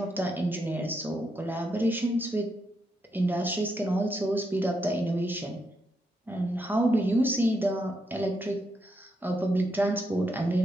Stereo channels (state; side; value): normal; both; correlation 0.81